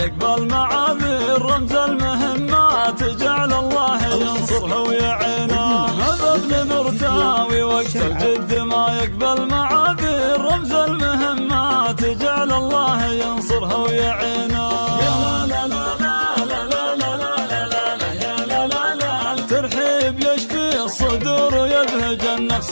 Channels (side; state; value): both; inverted; correlation -1.00